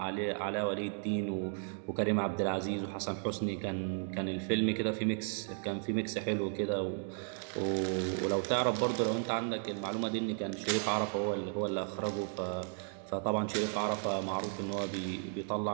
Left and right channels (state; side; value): silent; left; 55 dB below the other